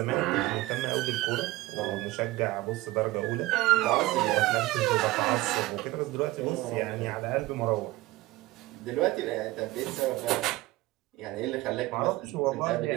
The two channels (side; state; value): left; quieter; 18.6 dB